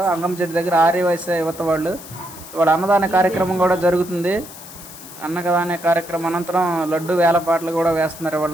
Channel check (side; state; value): left; noise; hiss, 16 dB below the sound